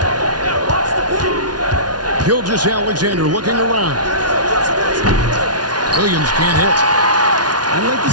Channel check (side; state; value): left; late; 0.69 ms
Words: Gilgeous-Alexander looking around. Williams can't hit. I'd like to